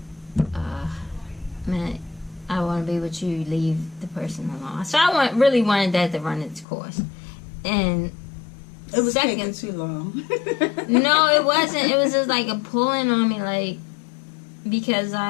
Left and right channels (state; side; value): drops out; right; at 6.7 s